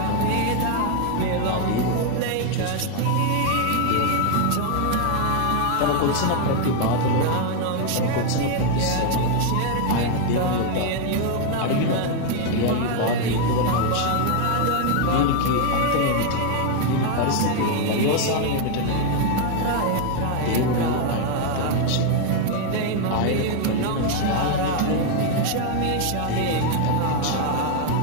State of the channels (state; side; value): different; both; correlation 0.00